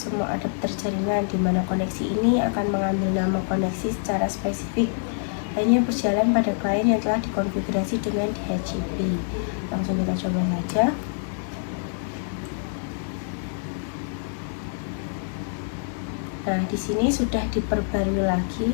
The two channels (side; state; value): right; silent; digital silence